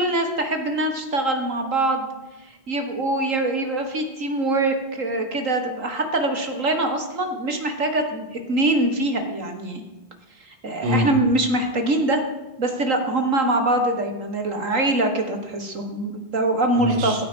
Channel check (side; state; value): left; late; 3.8 ms